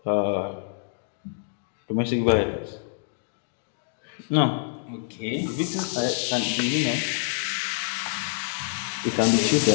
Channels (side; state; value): right; silent; digital silence